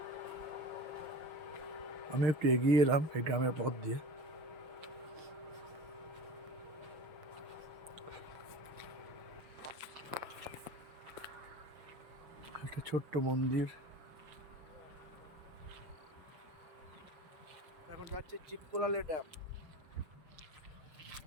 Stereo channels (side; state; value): left; late; 6.6 ms